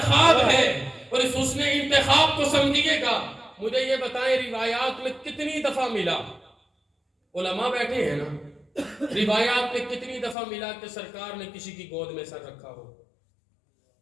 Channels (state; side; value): drops out; right; at 10.4 s